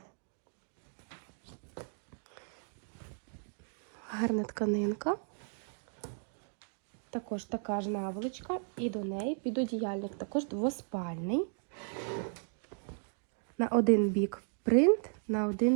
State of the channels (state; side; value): silent; left; 54 dB below the other